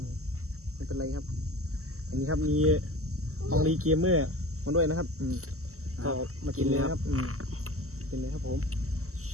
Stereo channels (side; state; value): left; late; 0.64 ms